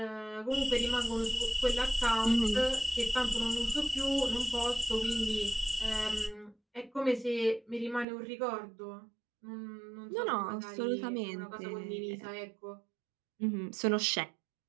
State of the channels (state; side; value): drops out; left; at 8.1 s